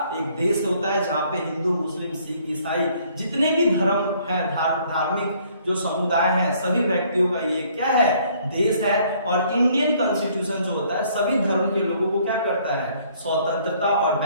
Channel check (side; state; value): both; inverted; correlation -0.62